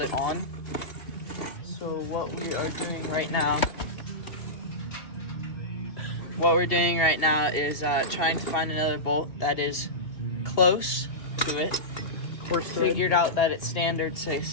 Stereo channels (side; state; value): right; late; 2.8 ms